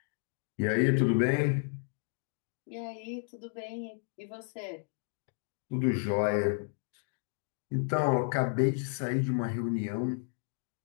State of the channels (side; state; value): right; silent; 56 dB below the other